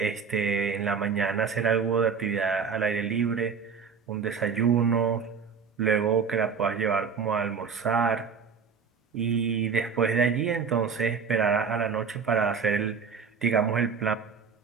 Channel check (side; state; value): left; quieter; 6.0 dB